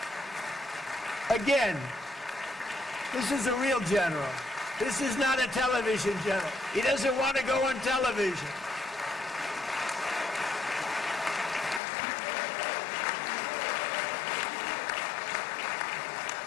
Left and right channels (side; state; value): right; drops out; at 11.8 s